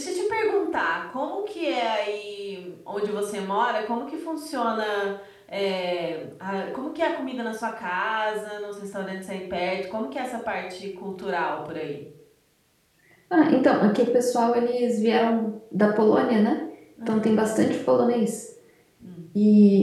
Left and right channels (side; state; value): both; identical; correlation 1.00